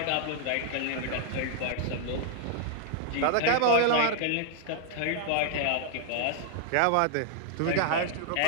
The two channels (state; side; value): different; both; correlation 0.00